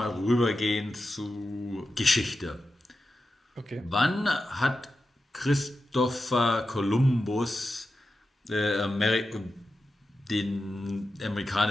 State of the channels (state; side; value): normal; both; correlation 0.91